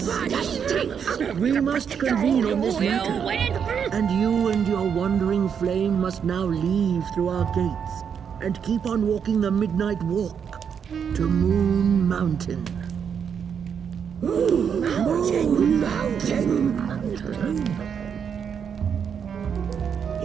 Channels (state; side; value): quieter; left; 7.4 dB